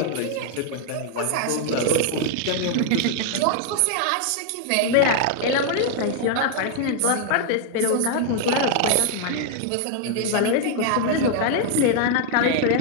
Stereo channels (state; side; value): different; both; correlation 0.00